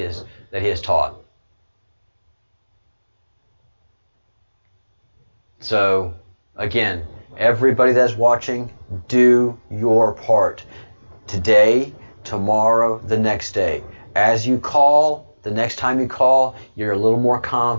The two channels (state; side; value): inverted; both; correlation -1.00